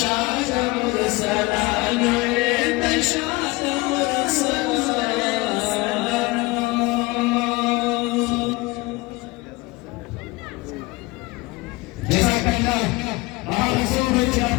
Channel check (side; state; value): right; quieter; 23.2 dB